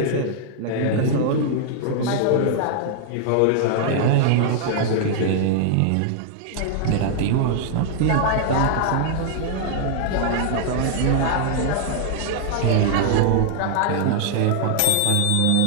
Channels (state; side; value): different; both; correlation 0.00